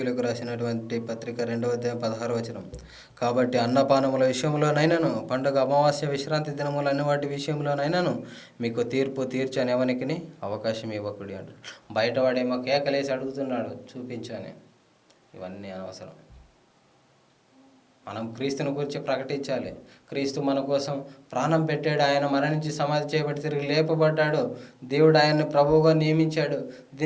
రాసినటువంటి పత్రిక 2వ అధ్యాయం 16వ వచనం. కాబట్టి అన్నపానముల విషయంలోనైనాను, పండుగ అమావాస్య విశ్రాంతి దినములు అన్ని వాటి విషయంలోనైనాను మీకు తీర్పు తీర్చని ఎవరికి అవకాశం ఇవ్వకుడి అంటాడు. బయటవాడేమో కేకలేసి అడుగుతున్నాడు, చూపించని. ఇవన్నీ అనవసరం. మనం క్రీస్తుని గురించి ప్రకటించాలి. క్రీస్తు మన కోసం ప్రాణం పెట్టాడు, ఆయన మరణించి సమాధి చేయబడి తిరిగి లేపబడ్డాడు, దేవుడు ఆయన్ని ప్రభువుగా నియమించాడు,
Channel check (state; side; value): identical; both; correlation 1.00